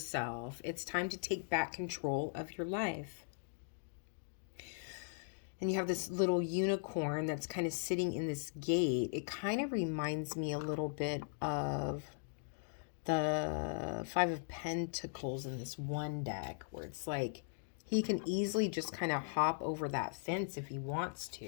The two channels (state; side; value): silent; right; digital silence